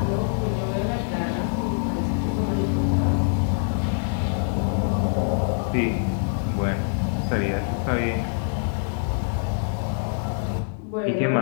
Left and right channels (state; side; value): silent; right; digital silence